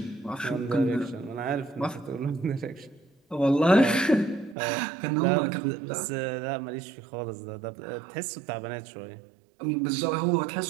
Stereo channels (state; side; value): drops out; left; at 4.5 s